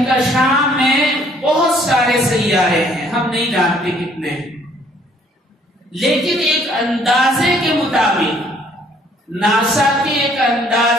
میں بہت سارے سیارے ہیں، ہم نہیں جانتے کتنے ہیں، لیکن ایک اندازے کے مطابق، ناسا کے ایک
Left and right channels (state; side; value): normal; both; correlation 0.62